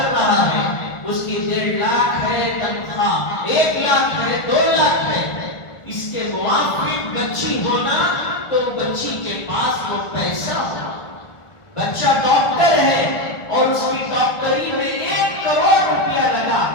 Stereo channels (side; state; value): right; late; 1.4 ms